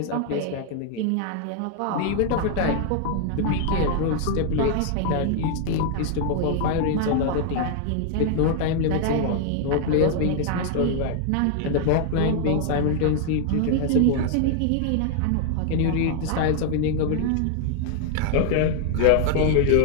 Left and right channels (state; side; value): different; both; correlation 0.00